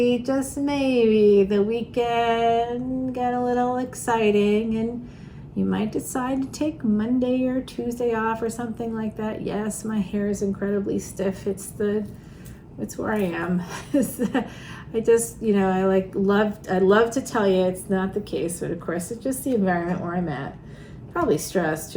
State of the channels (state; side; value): identical; both; correlation 1.00